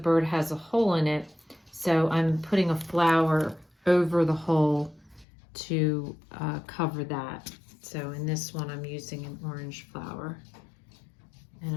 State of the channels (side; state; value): right; drops out; at 5.2 s